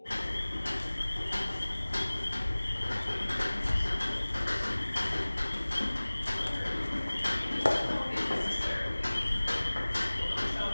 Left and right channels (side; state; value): both; inverted; correlation -1.00